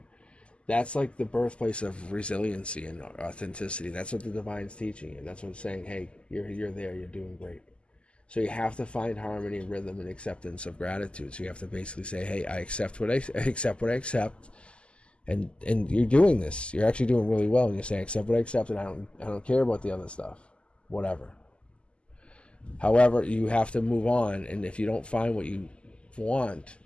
that's like the birthplace of resiliency and authenticity. That's what the divine's teaching you. That's what it's saying. Hey, you're there. You're doing great. So you have to find harmony, rhythm, and acceptance of gratitude. So you have to basically say, hey, I accept what I accept, and you're doing this. You're actually doing really well. And you're saying, accept what I accept, and I don't care about the other stuff, whatever. However, you have to move on, and if you don't find what you want,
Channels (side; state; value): right; late; 0.053 ms